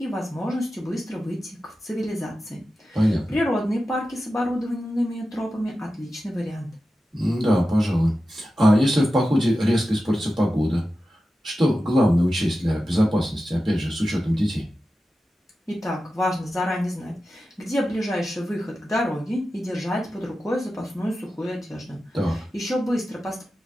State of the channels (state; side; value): normal; both; correlation 0.93